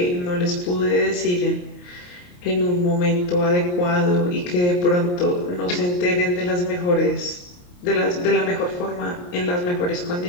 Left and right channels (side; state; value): right; late; 28 ms